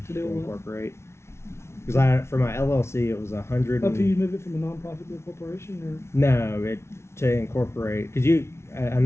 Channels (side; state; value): right; late; 0.13 ms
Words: To do to what? incorporate. Because for my LLC, it was $100. Up to you move it from a nonprofit to a corporation, or No, to incorporate, because a